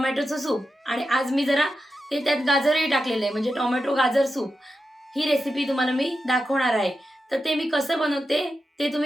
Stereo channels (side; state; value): both; normal; correlation 0.89